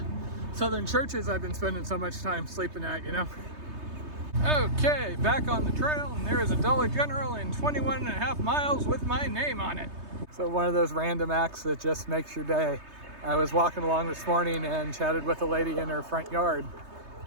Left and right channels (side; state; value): left; late; 3.3 ms